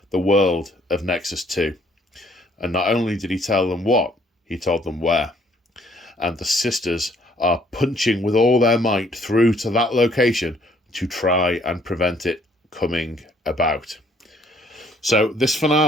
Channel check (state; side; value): normal; both; correlation 0.64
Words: the world of Nexus 2. And not only did he tell them what, he told them where. And the sisters are punching with all their might through to that location to try and prevent it coming about. So this